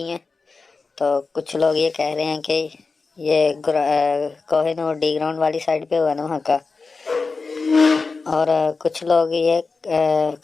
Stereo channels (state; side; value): quieter; right; 4.3 dB